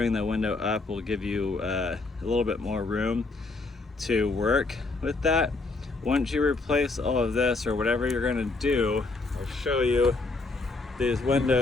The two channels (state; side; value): quieter; right; 3.5 dB